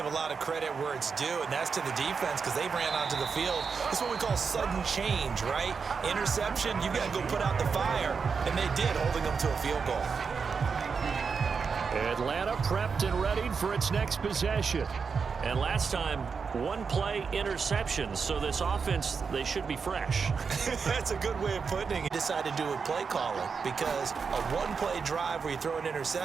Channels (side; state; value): left; quieter; 5.5 dB